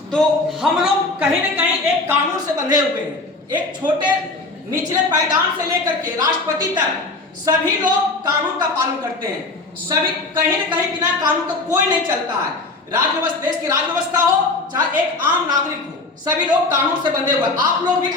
तो हम लोग कहीं न कहीं एक कानून से बंधे हुए हैं। एक छोटे निचले पायदान से लेकर के राष्ट्रपति तक सभी लोग कानून का पालन करते हैं। सभी कहीं न कहीं बिना कानून का कोई नहीं चलता है। राज्य देश की राज्य व्यवस्था हो चाहे एक आम नागरिक हो, सभी लोग कानून से बंधे हुए। आप लोग भी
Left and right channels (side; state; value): right; quieter; 3.3 dB